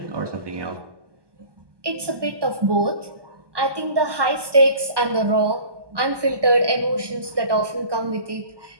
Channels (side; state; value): left; late; 1.2 ms